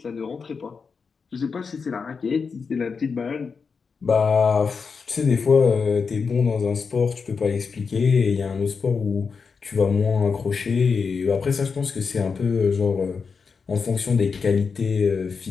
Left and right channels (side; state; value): right; quieter; 5.4 dB